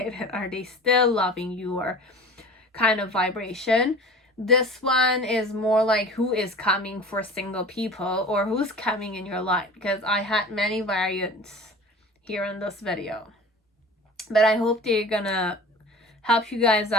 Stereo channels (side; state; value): both; normal; correlation 0.40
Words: and are they still loving you, or kind of vibration. This one is more like who is coming for single people, or who's coming in your life, because I had many variants here in this video. But I hope they're gonna help you guys